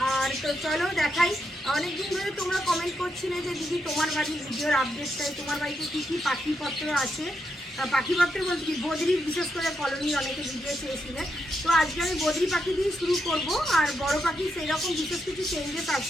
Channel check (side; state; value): both; normal; correlation 0.82